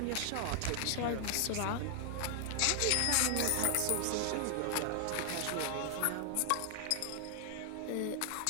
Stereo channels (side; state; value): both; different; correlation 0.00